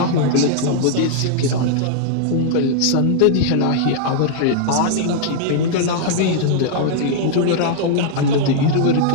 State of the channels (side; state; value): both; different; correlation -0.01